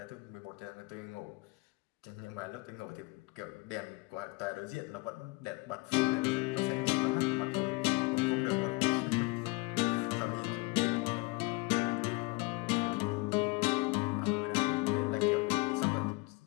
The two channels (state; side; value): quieter; right; 26.3 dB